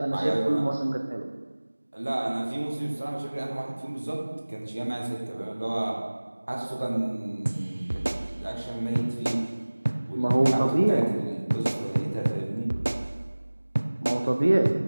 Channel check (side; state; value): both; inverted; correlation -1.00